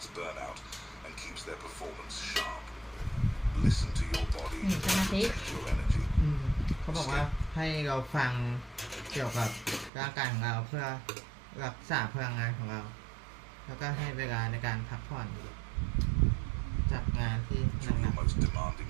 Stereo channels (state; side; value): drops out; left; at 9.9 s